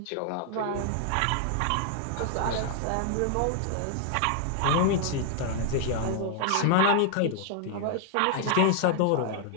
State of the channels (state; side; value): different; both; correlation 0.00